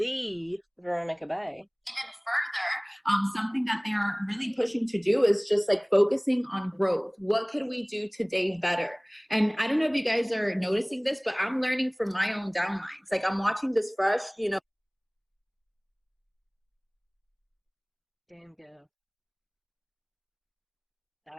Veronica Bay. even further, something that they are really pushing to do is just like focusing on growth. What could we do today better? And I don't know if you guys are noticing this, but I'm learning from my own downlines. Like I'm watching this fresh, Damn girl.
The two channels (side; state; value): both; identical; correlation 1.00